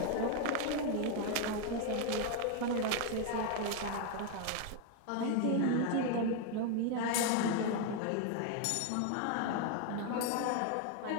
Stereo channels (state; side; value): different; both; correlation 0.01